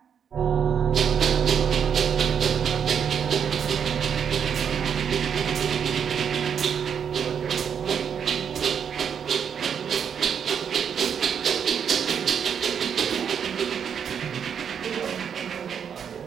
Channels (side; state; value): left; quieter; 7.6 dB